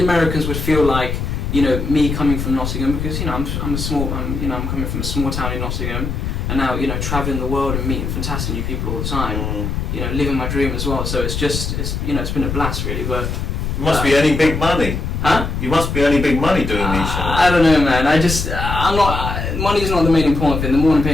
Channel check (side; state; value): left; noise; rumble, 3 dB below the sound